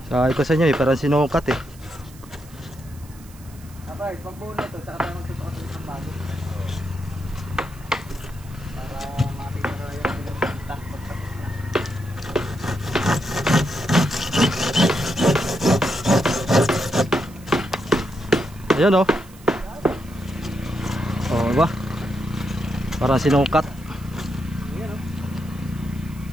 Sabi ko sa inyo parang sinukat eh. Abay, pag buo na ito, tsaka tayo magsusukat ng isang bago. Para makita na yung pinagpunta pagtapos na. Ayun oh. Oh, diba? Parang sinukat. Ayan, oh.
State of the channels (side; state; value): right; noise; hiss, 23 dB below the sound